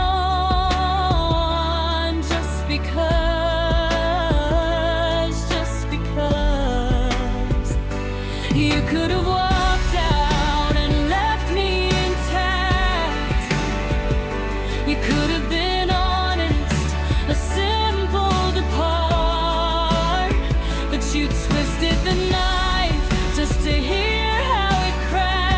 Just because you could have walked out and left me intact. You could have been honest, a simple depart, but you twisted the knife just to hear how it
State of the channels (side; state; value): both; identical; correlation 1.00